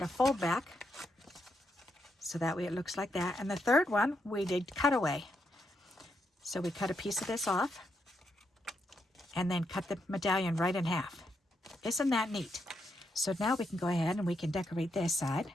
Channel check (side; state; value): both; normal; correlation 0.80